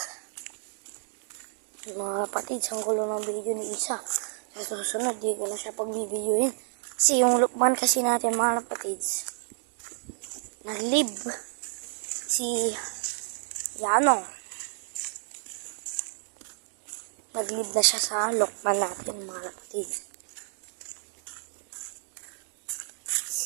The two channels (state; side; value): silent; left; digital silence